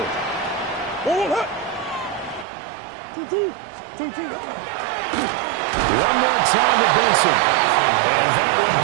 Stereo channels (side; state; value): left; drops out; at 2.5 s